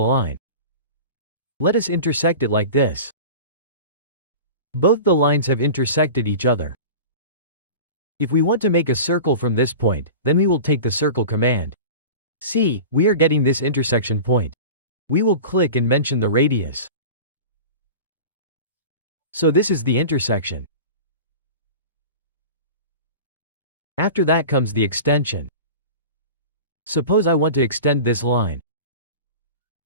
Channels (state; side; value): inverted; both; correlation -0.34